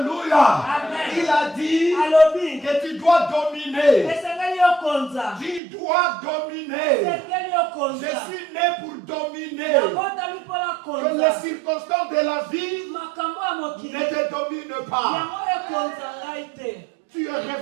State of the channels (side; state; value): left; drops out; at 5.6 s